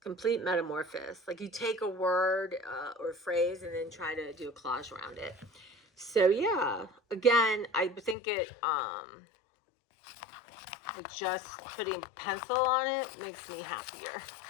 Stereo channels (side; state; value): right; drops out; at 8.2 s